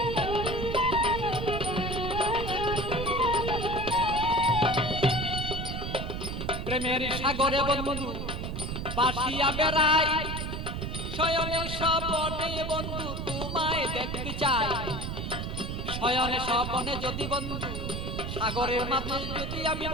প্রেমের সাগরে বন্ধু বাসিয়া বেড়াই। শয়নে স্বপনে বন্ধু তোমায় দেখতে চাই। শয়নে স্বপনে যদি বন্ধু সাগরের মাঝে যদি আমি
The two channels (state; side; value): noise; right; rumble, 4 dB below the sound